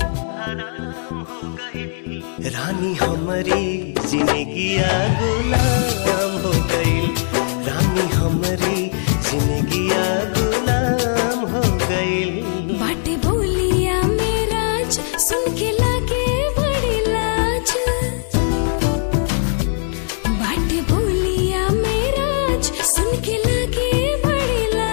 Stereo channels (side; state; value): right; silent; digital silence